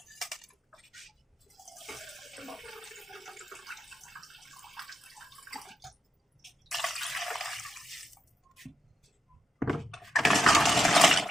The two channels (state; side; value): normal; both; correlation 0.84